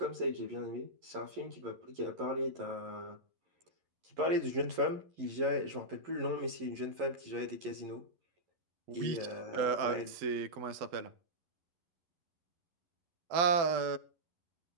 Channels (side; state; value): left; late; 11 ms